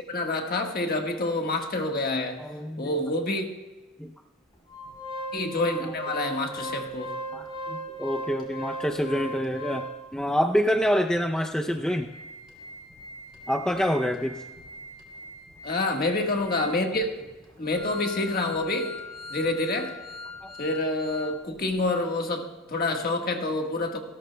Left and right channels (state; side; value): normal; both; correlation 0.42